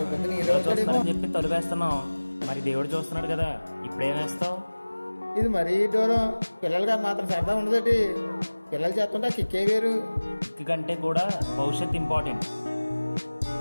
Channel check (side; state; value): both; inverted; correlation -1.00